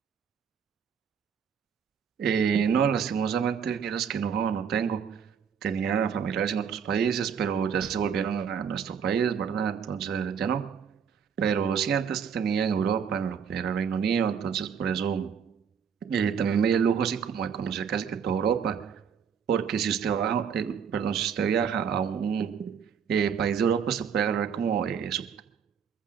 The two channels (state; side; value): quieter; left; 7.2 dB